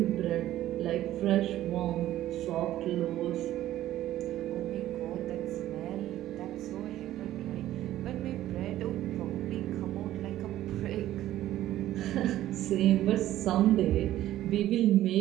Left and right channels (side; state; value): left; quieter; 13.7 dB